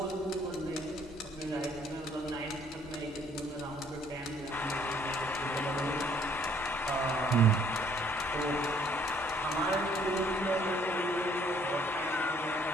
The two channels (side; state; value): both; normal; correlation 0.62